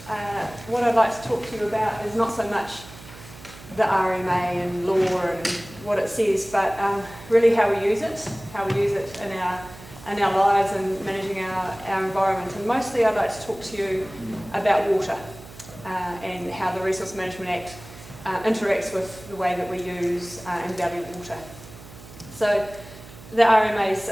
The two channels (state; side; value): noise; right; hum, 18 dB below the sound